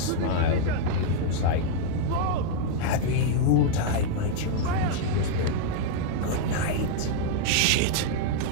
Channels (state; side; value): different; both; correlation -0.01